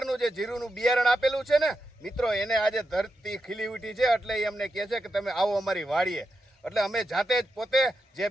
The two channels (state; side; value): normal; both; correlation 0.86